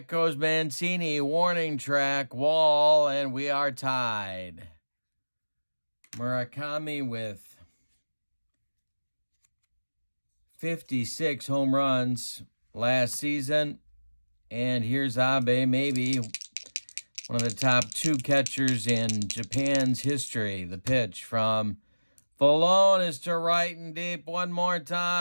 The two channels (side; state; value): both; inverted; correlation -1.00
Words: goes Mancini, warning track, wall, and we are tied. Murakami with 56 home runs last season. And here's Abe, maybe one of the top 2 catchers in Japan's history. The pitch from Vallone is to right and deep one more